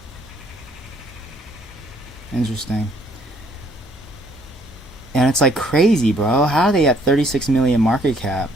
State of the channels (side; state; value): both; normal; correlation 0.64